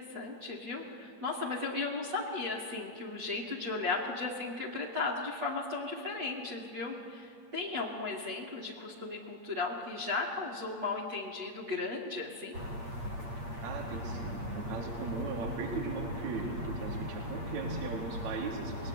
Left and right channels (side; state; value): left; late; 8.2 ms